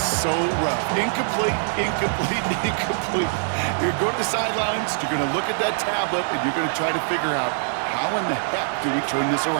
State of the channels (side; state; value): left; silent; digital silence